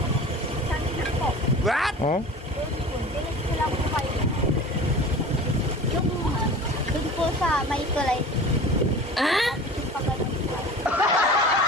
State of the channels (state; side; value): normal; both; correlation 0.38